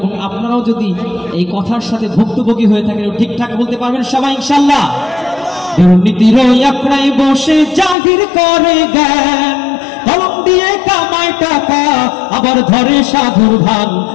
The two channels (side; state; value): right; drops out; at 8.0 s